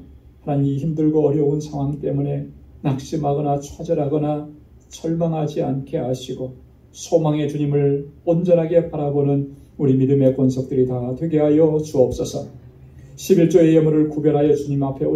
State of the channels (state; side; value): identical; both; correlation 1.00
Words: 하나님 힘들고 어려운 상황 때문에 낙심하거나 좌절하거나 절망하지 않게 하시고 소망의 주님을 온전하게 바라보는 우리 믿음의 권속들이 다 되게 하여 주옵소서. 11조의 예물을 구별하여 주님 앞에